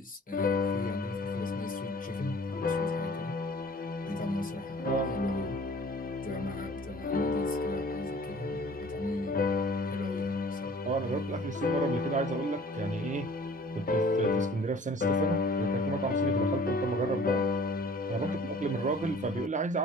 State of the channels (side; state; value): both; normal; correlation 0.50